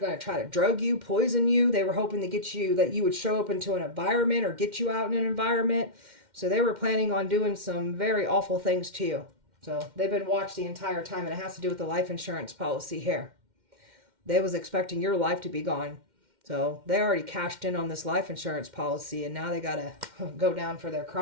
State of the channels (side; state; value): left; late; 2.1 ms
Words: to try to drug you, poison you. They were hoping to get you, that you would show up into an environment or get you out in an environment. So they were planning on doing some very awful things to you. So they've been watched the entire time, and it has to do with the life insurance policy here. They was expecting your life to be gone. So they already cashed in on this life insurance policy, and now they got to go down for their